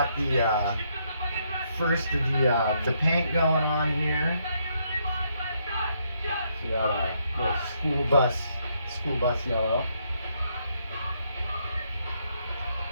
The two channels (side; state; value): both; inverted; correlation -0.74